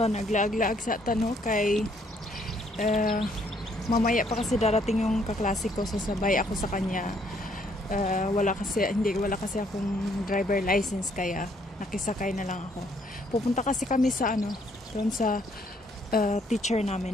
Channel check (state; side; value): normal; both; correlation 0.67